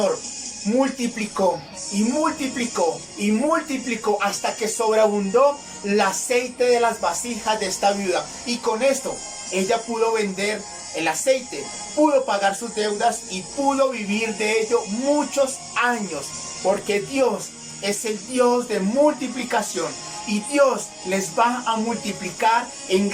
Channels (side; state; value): both; identical; correlation 1.00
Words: multiplicó y multiplicó y multiplicó hasta que sobreabundó el aceite de las vasijas de esta viuda. Y con esto ella pudo vender el aceite, pudo pagar sus deudas y pudo vivir de ello muchos años, porque Dios es el Dios de multiplicación y Dios les va a multiplicar en